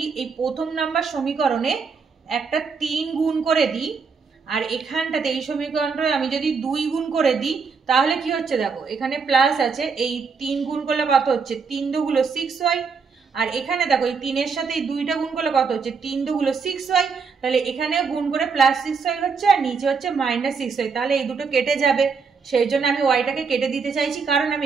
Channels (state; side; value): quieter; left; 5.4 dB